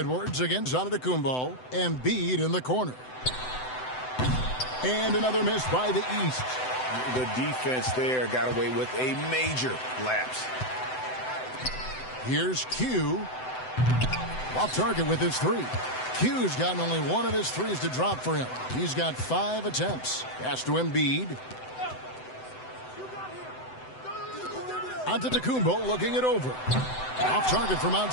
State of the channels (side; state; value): right; late; 7.9 ms